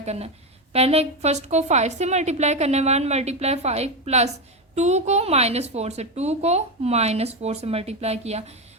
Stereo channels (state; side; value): normal; both; correlation 0.12